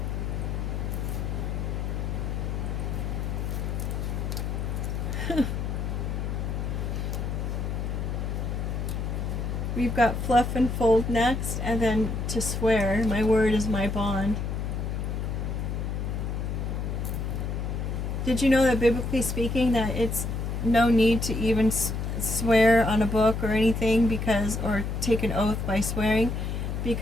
We've got fluff and fold next, and then to swear. My word is my bond. Did you know that biblically speaking that it's no need to even swear on a book or anything because, or take an oath by swearing,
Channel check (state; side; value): noise; left; hum, 2 dB below the sound